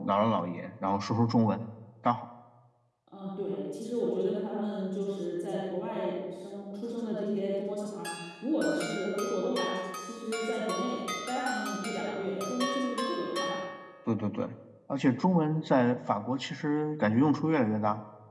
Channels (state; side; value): identical; both; correlation 1.00